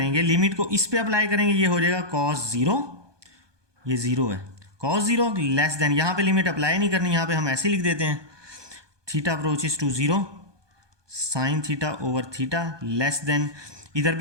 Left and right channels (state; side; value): late; left; 1.2 ms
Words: लिमिट को इस पे अप्लाई करेंगे, ये हो जाएगा कॉस 0, ये 0 है, कॉस 0 लेस देन, यहाँ पे लिमिट अप्लाई नहीं करनी, यहाँ पे हम ऐसे लिख देते हैं theta approaches to 0 sine theta over theta less than, इधर